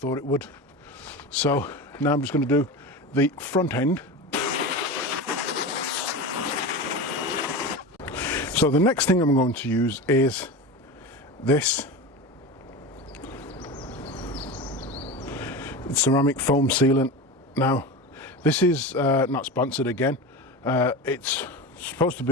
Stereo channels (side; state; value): both; normal; correlation 0.26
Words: it would. So now I'm just going to do the front end. So the next thing I'm going to use is this ceramic foam sealant. Now this is not sponsored again. It's supposed to